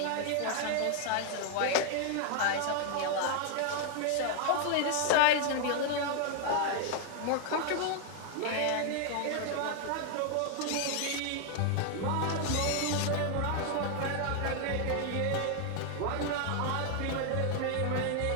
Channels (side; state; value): both; different; correlation 0.00